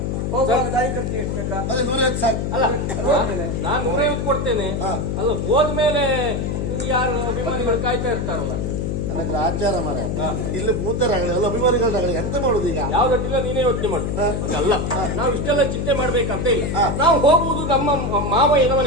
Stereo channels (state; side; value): noise; left; hum, 1 dB below the sound